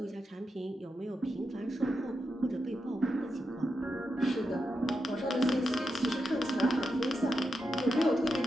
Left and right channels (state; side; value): normal; both; correlation 0.86